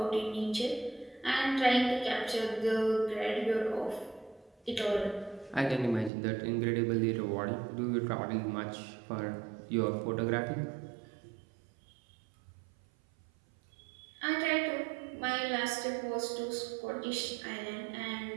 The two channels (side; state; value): left; drops out; at 6.1 s